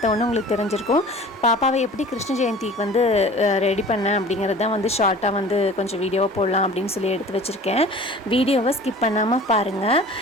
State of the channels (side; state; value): both; normal; correlation 0.43